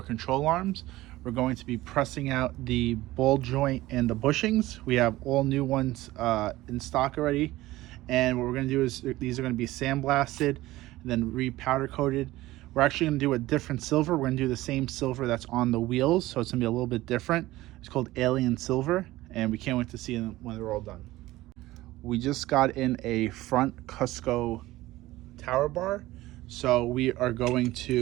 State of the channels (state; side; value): quieter; left; 17.4 dB